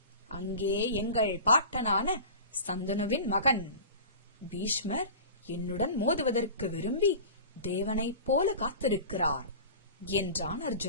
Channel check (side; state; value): both; inverted; correlation -0.35